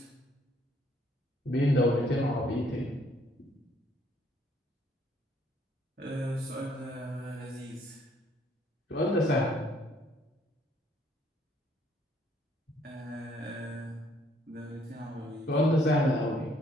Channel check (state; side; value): normal; both; correlation 0.66